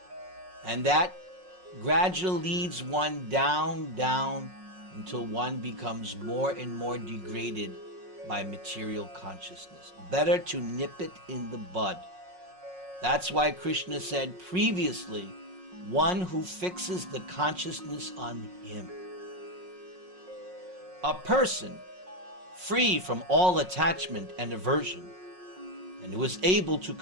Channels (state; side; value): late; left; 5.5 ms